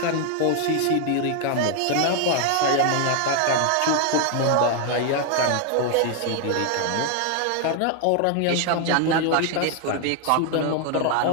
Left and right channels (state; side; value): different; both; correlation 0.00